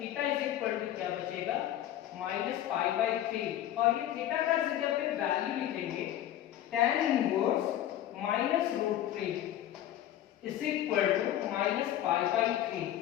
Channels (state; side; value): quieter; right; 12.3 dB